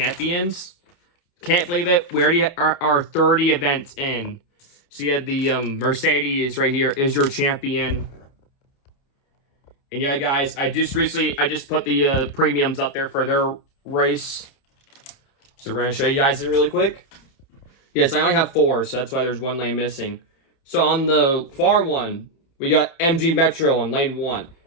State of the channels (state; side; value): late; right; 29 ms